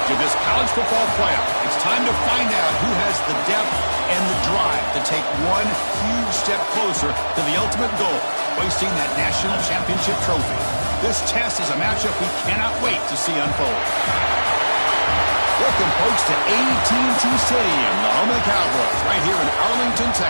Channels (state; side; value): inverted; both; correlation -1.00